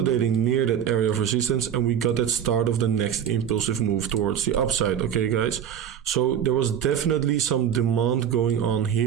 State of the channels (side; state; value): left; quieter; 8.9 dB